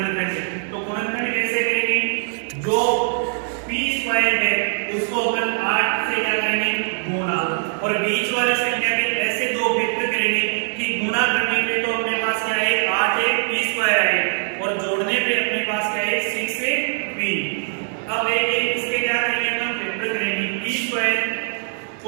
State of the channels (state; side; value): silent; left; 62 dB below the other